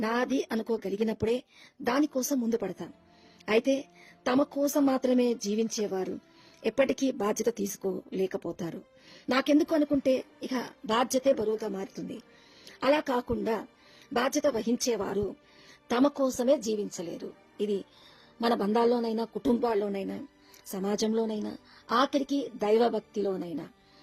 నాది అనుకోగలిగినప్పుడే దానికోసం ముందు పడతాం. అయితే తమ కోసం మాత్రమే జీవించేవారు ఎప్పటికీ బాధ్యత తీసుకోలేకపోతారు. నాకెందుకు అనుకుంటే ఇక బాధ్యతే బరువుగా మారుతుంది. అలా కాకుండా బాధ్యత వహించేవారు తమ కోసమే జీవించలేరు. ఇది మన బంధాల్లోనైనా, కుటుంబాల్లోనైనా, సమాజంలోనైనా, ఆఖరికి దైవభక్తిలోనైనా.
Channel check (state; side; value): identical; both; correlation 1.00